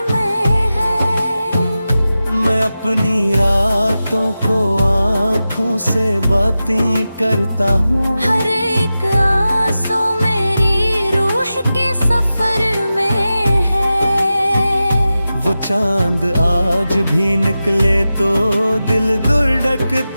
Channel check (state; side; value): inverted; both; correlation -0.93